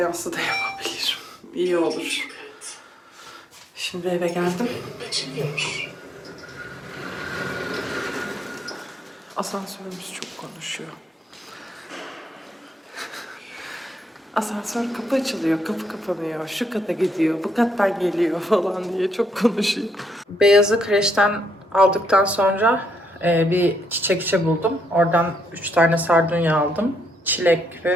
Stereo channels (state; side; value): normal; both; correlation 0.76